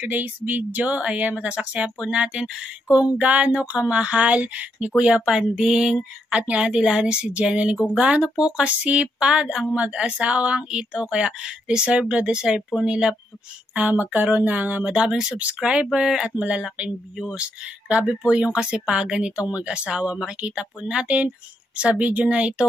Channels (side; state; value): both; normal; correlation 0.78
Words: video, ayan, masasaksihan po natin kung gaano kamahal ni Kuya Panding at ni Ate Lani si Jenalyn. Kung gaano po kasipag ang mag-asawang ito. Kaya deserve na deserve po nila magkaroon ng madaming subscriber at malalaking views. Grabe po yung kasipagan nitong mag-asawa. Makikita po natin sa video na